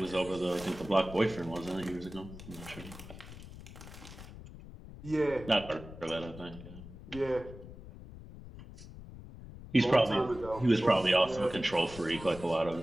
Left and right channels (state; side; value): noise; left; rumble, 15 dB below the sound